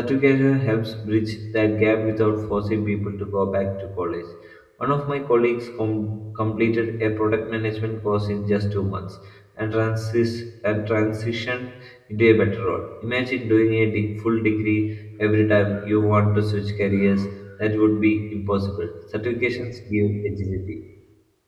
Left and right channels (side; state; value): both; identical; correlation 1.00